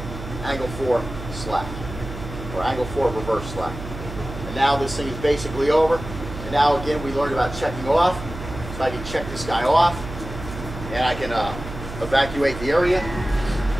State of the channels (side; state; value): right; noise; hum, 10 dB below the sound